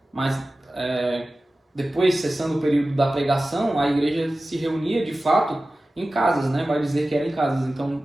Mas depois, cessando o período da pregação, a igreja se reunia de fato em casas, né? Vai dizer que era em casas. Então,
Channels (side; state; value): both; normal; correlation 0.96